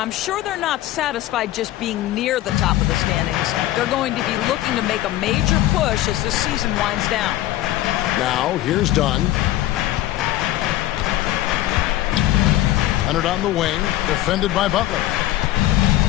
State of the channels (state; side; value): quieter; right; 14.9 dB